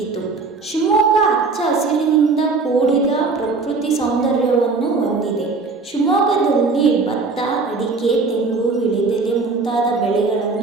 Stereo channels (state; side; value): quieter; left; 4.1 dB